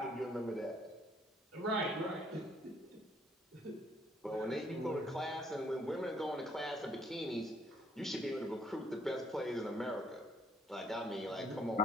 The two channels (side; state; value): both; normal; correlation 0.67